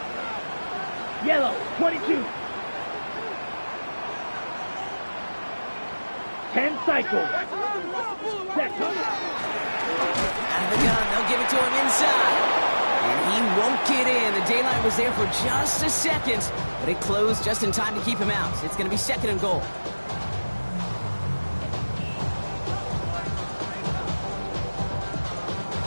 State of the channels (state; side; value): inverted; both; correlation -1.00